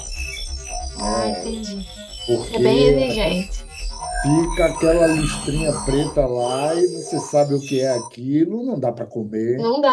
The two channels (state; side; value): identical; both; correlation 1.00